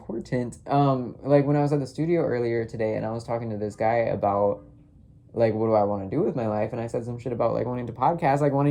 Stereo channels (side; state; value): both; identical; correlation 1.00